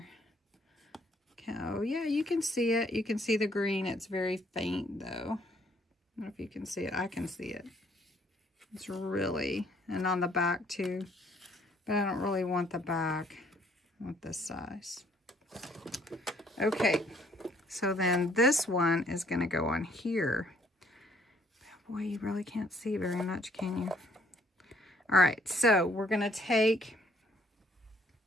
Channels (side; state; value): both; normal; correlation 0.64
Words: Oh yeah, you can see it. You can see the green. It's very faint though. I don't know if you can see it. I can see it. It's really, and on the back too. But I don't really want the back. I want this size. Okay, so then this one is going to go on here. Boy, you really can't see very much, can you? All right, so we're going to take